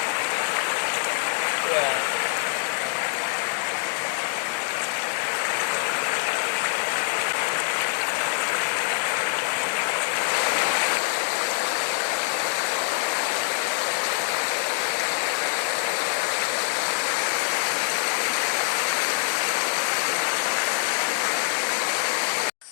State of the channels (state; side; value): silent; right; 62 dB below the other